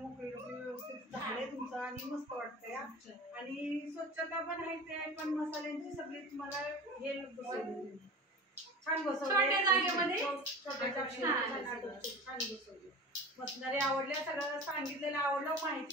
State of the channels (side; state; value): both; normal; correlation 0.35